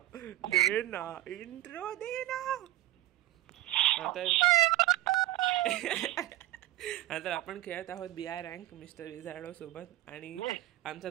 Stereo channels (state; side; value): quieter; left; 16.0 dB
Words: दे ना इंट्रो दे ना. आता आपण खेळत आहोत BI रँक मिस्टर विझार्डो सोबत आणि आमच्या